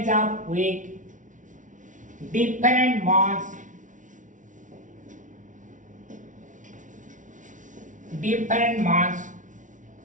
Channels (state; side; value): late; left; 0.37 ms